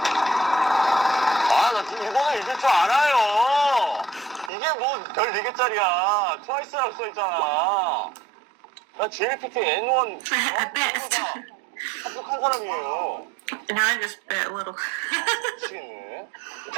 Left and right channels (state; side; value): drops out; left; at 4.5 s